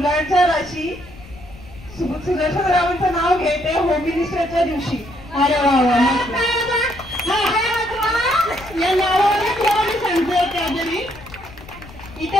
राशी सुदर्शनरावांचं नाव घेते होम मिनिस्टरच्या दिवशी. अरे वा या नावाने तुला मी सांगते त्याजरी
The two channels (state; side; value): noise; left; rumble, 19 dB below the sound